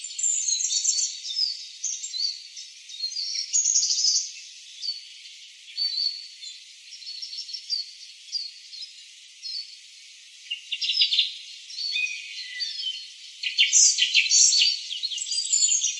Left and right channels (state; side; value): identical; both; correlation 1.00